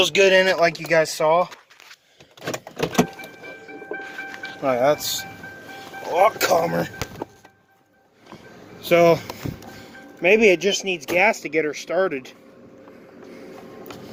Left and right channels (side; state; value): both; identical; correlation 1.00